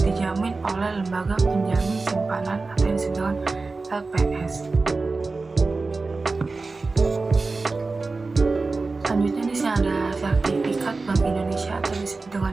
dijamin oleh lembaga penjamin simpanan atau yang disebut dengan LPS. Selanjutnya di sini ada sertifikat Bank Indonesia atau disebut dengan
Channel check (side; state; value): left; quieter; 3.8 dB